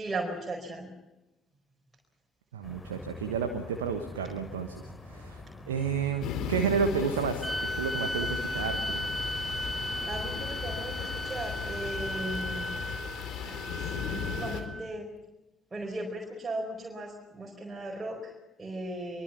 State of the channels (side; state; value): both; normal; correlation 0.32